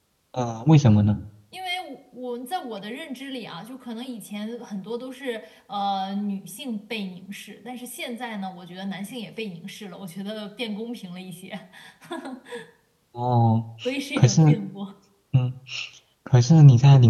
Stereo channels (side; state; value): both; identical; correlation 1.00